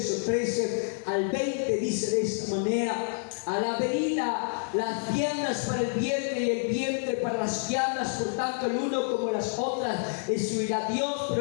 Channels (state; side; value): silent; right; digital silence